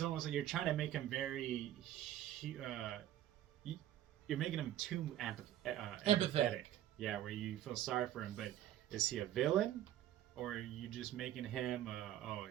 almost like you're trying to make him very, you're making him too empathetic. Yeah, where you feel sorry for him, but is he a villain? Or are you just making him,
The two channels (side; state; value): left; quieter; 12.5 dB